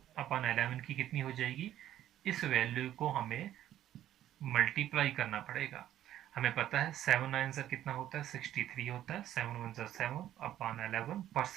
की कितनी हो जाएगी, इस वैल्यू को हमें मल्टीप्लाई करना पड़ेगा। हमें पता है 7 9 से कितना होता है, 63 होता है। 7 1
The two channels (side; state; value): left; quieter; 12.2 dB